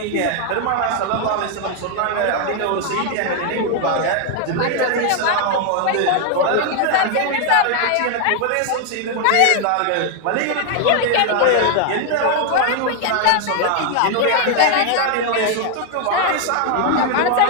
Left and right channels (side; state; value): both; different; correlation 0.00